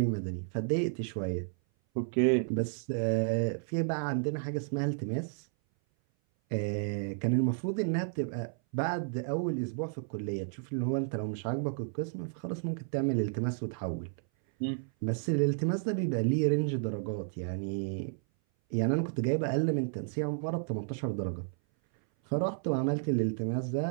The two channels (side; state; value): left; silent; 56 dB below the other